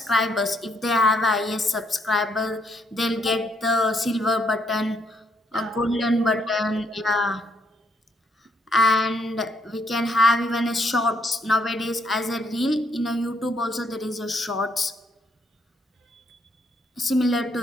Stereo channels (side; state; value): both; normal; correlation 0.72